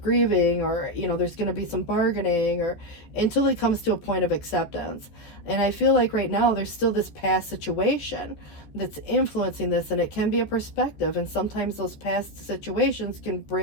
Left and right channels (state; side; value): late; right; 14 ms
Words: grieving, or, there's going to be some bargaining, or until it comes to a point of acceptance. And I feel like right now there's still this past situation that's influencing this, and it can be a perspective. And sometimes those past situations can